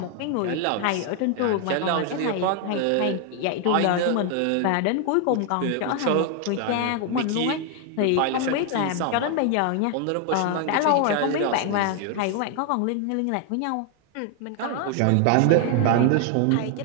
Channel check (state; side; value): different; both; correlation 0.00